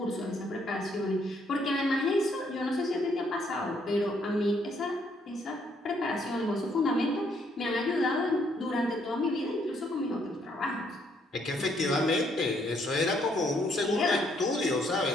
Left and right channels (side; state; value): both; normal; correlation 0.70